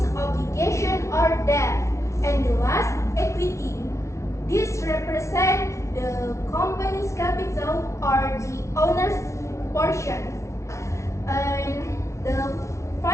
obligation or debt. And the last, equity. This represents the company's capital or the owner's portion. And the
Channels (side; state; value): right; late; 0.14 ms